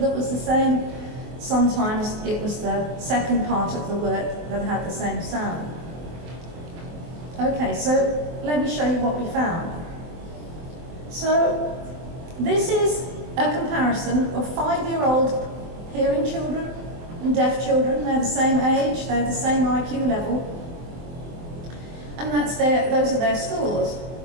the same. Sometimes it was the second part of the word that had the same sound. Okay, so let me show you what we found. So this is a comparison of 5-year-old hearing children and deaf children. They're the same age, they're the same IQ level, and those are their scores.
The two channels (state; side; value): late; left; 23 ms